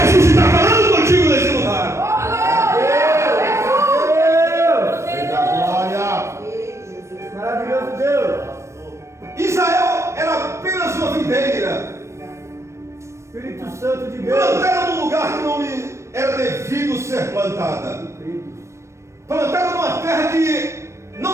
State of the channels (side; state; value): left; late; 0.13 ms